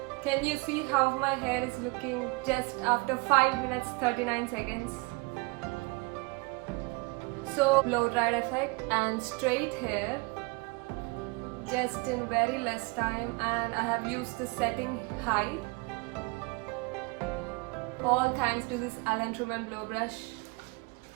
Can you see how my hair is looking just after 5 minutes 39 seconds? So blow dried effect and straight hair just in very less time, and I have used the setting high. All thanks to this Alan Truman blow brush.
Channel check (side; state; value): left; quieter; 27.6 dB